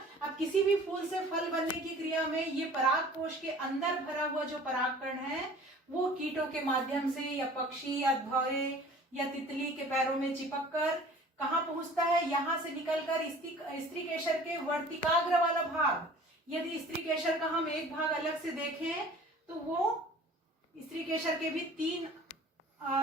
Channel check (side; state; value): both; normal; correlation 0.47